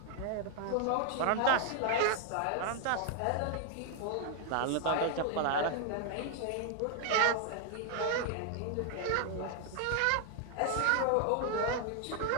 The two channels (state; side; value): different; both; correlation 0.00